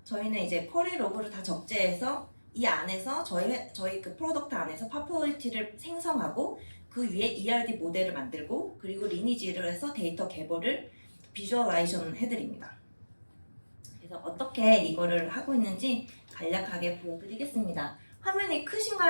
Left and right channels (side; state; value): both; inverted; correlation -1.00